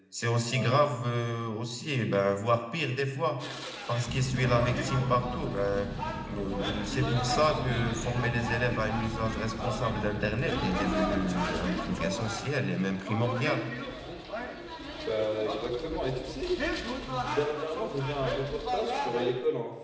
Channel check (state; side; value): identical; both; correlation 1.00